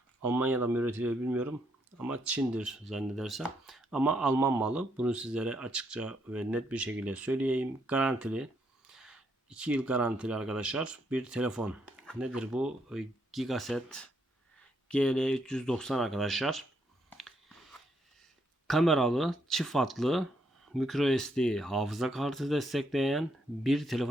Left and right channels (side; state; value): both; normal; correlation 0.75